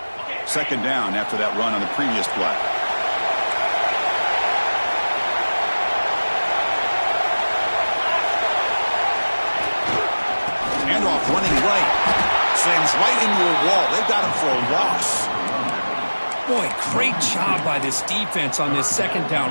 Second down after that run on the previous play. Handoff running right. Slams right into a wall. They've got him for a loss. Boy, great job by this defense on this second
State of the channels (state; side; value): inverted; both; correlation -1.00